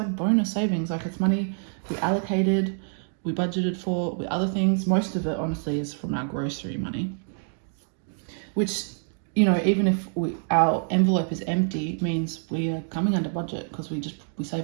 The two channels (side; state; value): left; silent; 57 dB below the other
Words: bonus savings, like it's money we allocated, we budgeted for with other things. Most of it, honestly, is from our grocery money, which, you know, even if our envelope is empty, means we are coming under budget because we